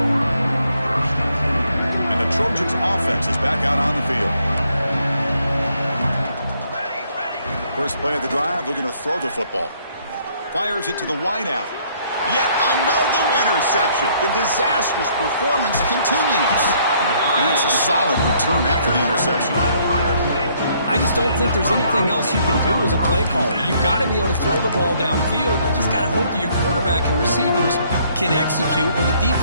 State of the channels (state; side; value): inverted; both; correlation -0.66